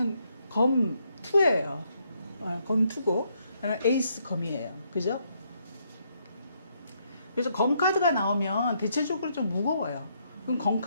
검 2예요. 검 2고 에이스 검이에요. 그죠? 그래서 검 카드가 나오면 대체적으로 좀 무거워요. 그럼 검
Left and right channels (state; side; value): inverted; both; correlation -0.75